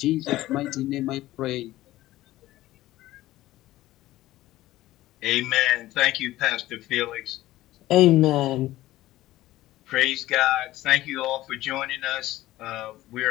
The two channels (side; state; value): right; quieter; 16.1 dB